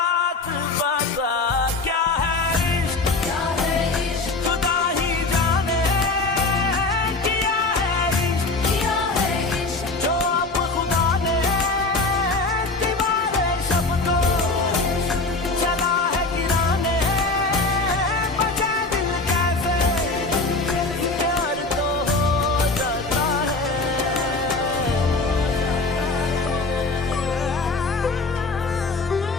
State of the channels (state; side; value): quieter; right; 3.5 dB